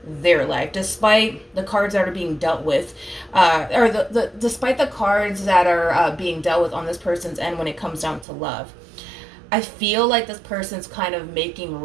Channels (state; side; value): drops out; left; at 8.2 s